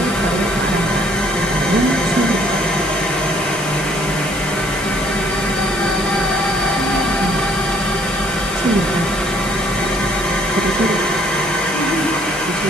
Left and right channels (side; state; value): left; noise; hiss, 11 dB below the sound